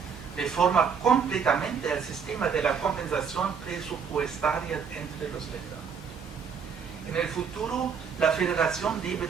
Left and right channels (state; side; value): quieter; left; 6.5 dB